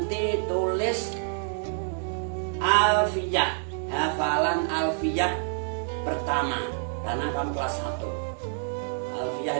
tulis alfiyah, hafalan alfiyah pertama, karena kamu kelas 1. Alfiyah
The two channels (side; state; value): left; silent; digital silence